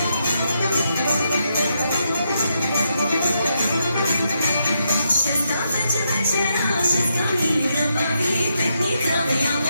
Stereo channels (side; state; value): both; inverted; correlation -0.81